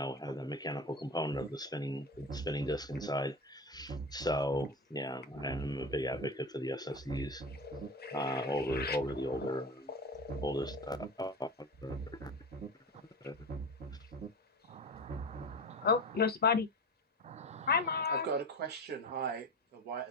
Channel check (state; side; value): normal; both; correlation 0.28